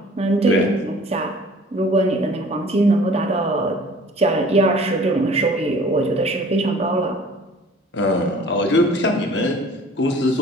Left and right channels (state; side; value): normal; both; correlation 0.49